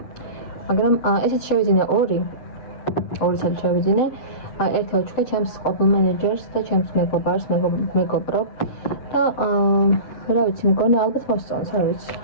მაგრამ ესეც შევიძინე ორი წელი შევიძინე. ერთი ვაჩუქე ჩემს ყოფილ მენეჯერს და ჩემს მეგობარს, მეგობრობ და რა ვიცი, მგონი ალბათ მოსწონს, არ ვიცი.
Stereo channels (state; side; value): late; right; 7.7 ms